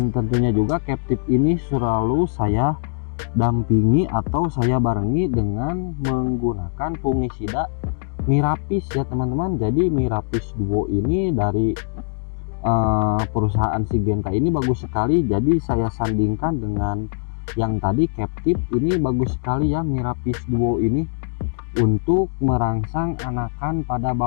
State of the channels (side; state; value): right; silent; digital silence